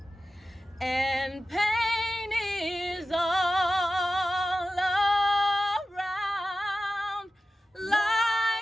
and pain is all around,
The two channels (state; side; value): normal; both; correlation 0.94